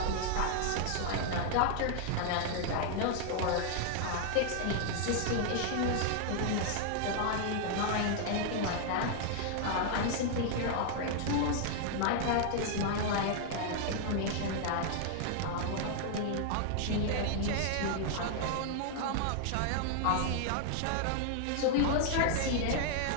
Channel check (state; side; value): different; both; correlation 0.00